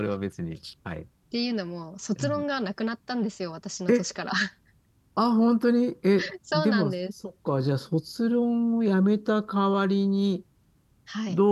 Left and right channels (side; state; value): both; identical; correlation 1.00